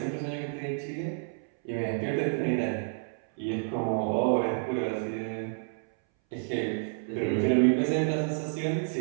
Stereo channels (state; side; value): silent; left; 58 dB below the other